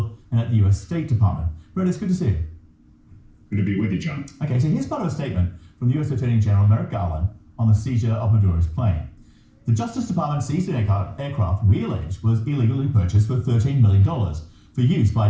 and at the US State Department. Brett, it's good to see you. Good to be with you, John. Okay, so here's part of a statement from the US Attorney General Merrick Garland on the seizure of Maduro's plane. The Justice Department seized an aircraft we allege was illegally purchased for $13 million for use by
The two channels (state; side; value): identical; both; correlation 1.00